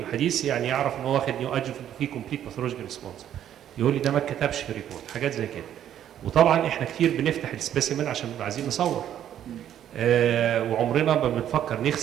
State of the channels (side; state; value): left; quieter; 10.6 dB